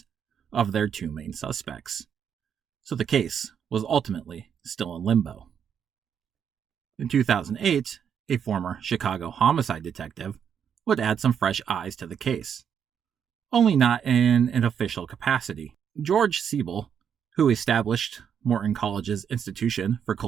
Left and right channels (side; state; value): left; quieter; 7.9 dB